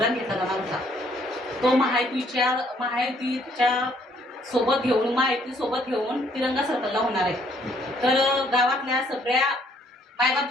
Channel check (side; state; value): both; normal; correlation 0.66